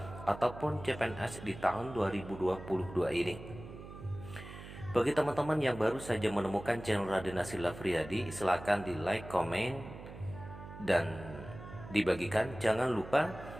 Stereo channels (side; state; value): right; noise; hum, 13 dB below the sound